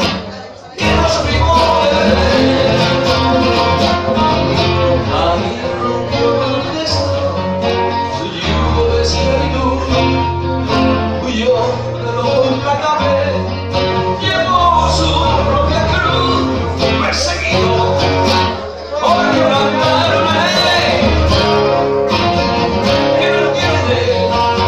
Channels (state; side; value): identical; both; correlation 1.00